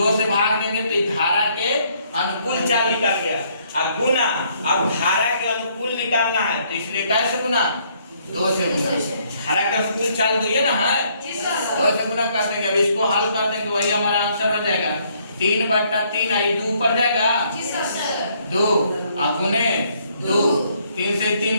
से भाग देंगे तो धारा के अनुकूल चाल निकल गया। अब गुना, अब धारा के अनुकूल निकालना है तो इसलिए कैसे गुना, 2 से गुना। धारा के अनुकूल चाल तो ये ना है, 2 से गुना कर देंगे। अब इसको हल कर देंगे, वही हमारा आंसर हो जाएगा 3/3। आई 2 ऊपर जाएगा 2 और गुने 2, 3 से 3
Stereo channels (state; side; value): inverted; both; correlation -0.67